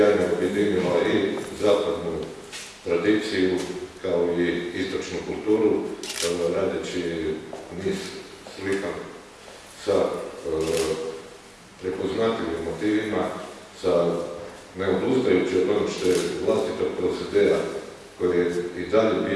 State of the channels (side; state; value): both; identical; correlation 1.00